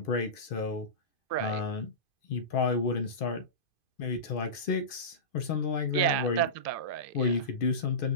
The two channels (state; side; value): late; right; 2.5 ms